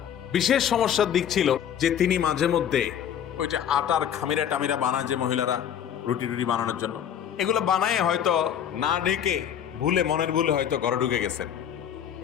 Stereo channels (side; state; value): right; quieter; 9.3 dB